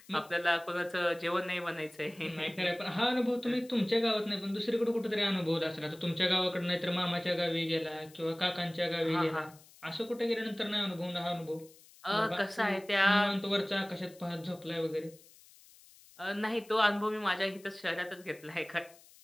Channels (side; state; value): left; noise; hiss, 24 dB below the sound